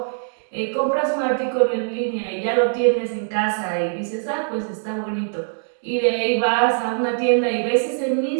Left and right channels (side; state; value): left; silent; 64 dB below the other